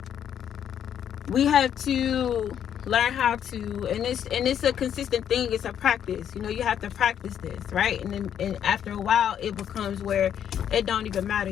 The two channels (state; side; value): quieter; right; 9.3 dB